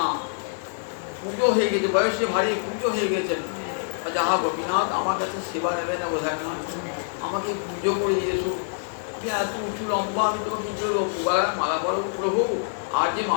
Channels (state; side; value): silent; right; digital silence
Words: পুজো হয়ে গেছে, বয়সে ভারী পুজো হয়ে গেছেন। যাহা গোপীনাথ আমার কাছে সেবা নেবে না বোঝায় না, আমাকে পুজো করে দিয়েছো, তুমি এত উঁচু লম্বা, আমি তোমাকে কি করবো, মালা পড়ো প্রভু, আর যে